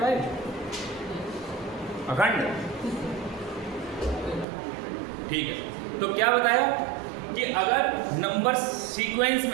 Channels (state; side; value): drops out; left; at 4.5 s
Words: अखंड, ठीक है। तो क्या बताया कि अगर नंबर सीक्वेंस